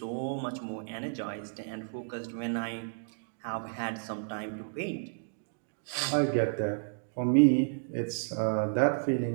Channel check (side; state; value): left; silent; digital silence